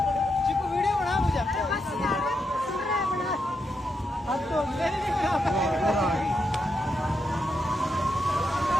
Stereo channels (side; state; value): both; normal; correlation 0.83